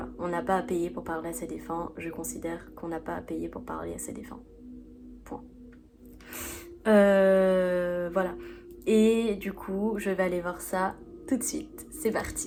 on n'a pas à payer pour parler à ses défunts. Je considère qu'on n'a pas à payer pour parler à ses défunts. Point. Voilà. Et du coup, je vais aller voir ça tout de suite. C'est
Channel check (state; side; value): identical; both; correlation 1.00